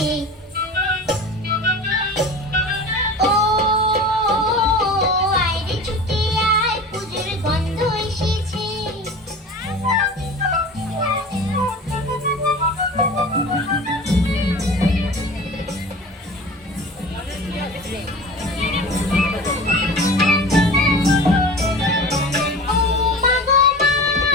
ও আয় রে ছুটে আয় পুজোর গন্ধ এসেছে।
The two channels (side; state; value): both; normal; correlation 0.36